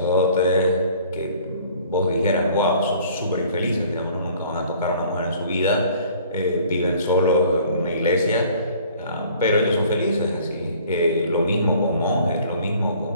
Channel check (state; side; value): inverted; both; correlation -0.54